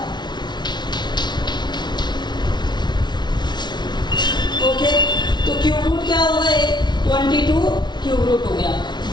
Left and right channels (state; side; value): late; right; 0.21 ms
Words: ओके, तो क्यूब रूट क्यूब रूट हो गया।